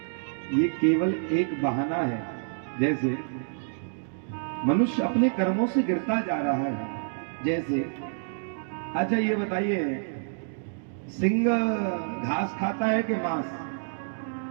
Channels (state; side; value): silent; left; digital silence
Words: ये केवल एक बहाना है, जैसे मनुष्य अपने कर्मों से गिरता जा रहा है। जैसे अच्छा ये बताइए, सिंह घास खाता है कि मांस?